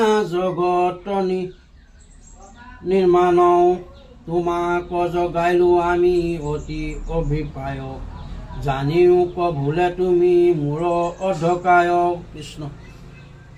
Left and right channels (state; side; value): identical; both; correlation 1.00